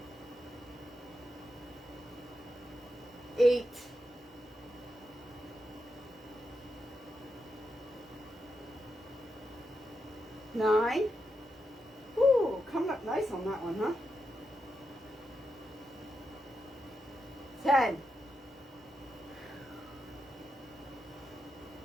8. 9. Ooh, coming up nice on that one, huh? 10.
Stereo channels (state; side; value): normal; both; correlation 0.86